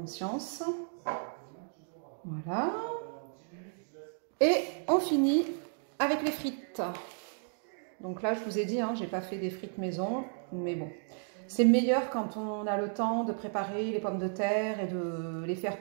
Voilà. Et on finit avec les frites. Donc là, je vous ai dit, hein, j'ai pas fait des frites maison, mais bon. C'est meilleur quand on a le temps de préparer les pommes de terre et de les faire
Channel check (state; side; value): silent; left; 56 dB below the other